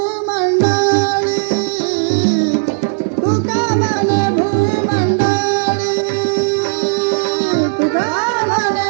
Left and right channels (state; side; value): silent; left; 63 dB below the other